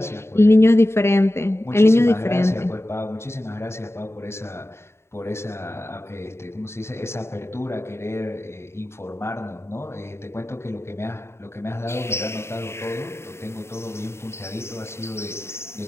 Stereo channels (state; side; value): late; right; 0.13 ms